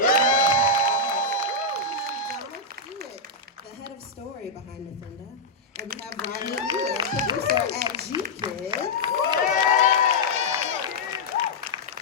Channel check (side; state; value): right; quieter; 3.0 dB